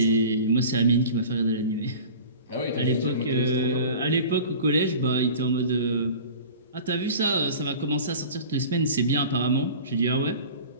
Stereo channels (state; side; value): inverted; both; correlation -0.40